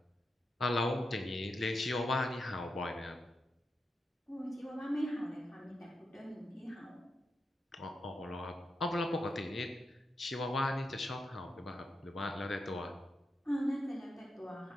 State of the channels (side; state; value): both; normal; correlation 0.86